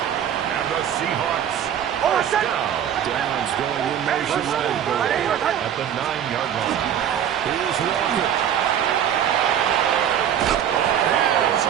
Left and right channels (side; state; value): left; quieter; 9.6 dB